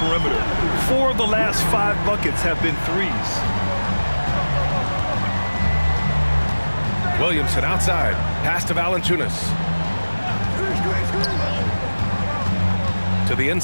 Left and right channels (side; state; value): both; inverted; correlation -1.00